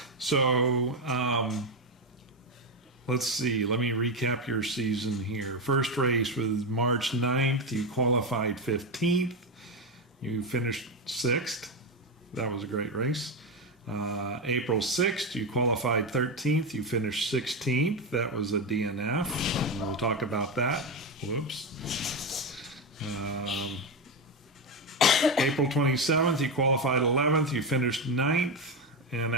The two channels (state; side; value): normal; both; correlation 0.12